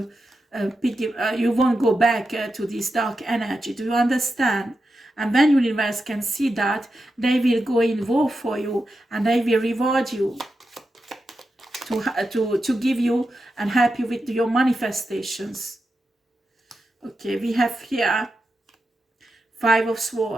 you won't go back to this dark energy. Do you understand? And when universe can see that, they will go in war for you and they will reward you to give you and help you with your manifestations. Okay, we have here 5 of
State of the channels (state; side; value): normal; both; correlation 0.89